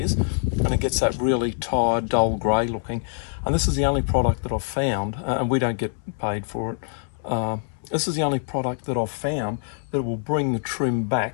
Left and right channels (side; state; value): right; silent; digital silence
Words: and it gets that really tired, dull grey looking. And this is the only product that I've found, and we don't get paid for it. This is the only product that I've found that will bring the trim